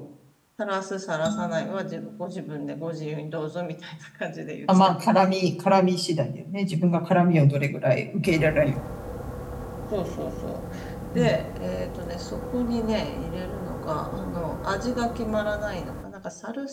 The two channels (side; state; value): both; identical; correlation 1.00